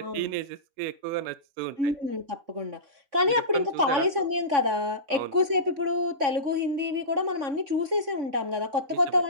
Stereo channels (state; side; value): late; left; 3.5 ms